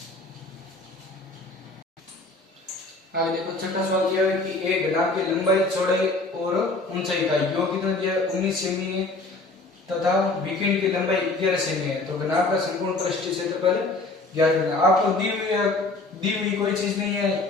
आगे देखो छठा सवाल दिया है कि एक घनाभ की लंबाई चौड़ाई और ऊंचाई का योग कितना दिया है 19 सेमी है तथा विकिरण की लंबाई 11 सेमी है तो घनाभ का संपूर्ण पृष्ठीय क्षेत्रफल ज्ञात करना। आपको दी हुई कोई चीज नहीं है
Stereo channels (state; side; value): quieter; right; 3.2 dB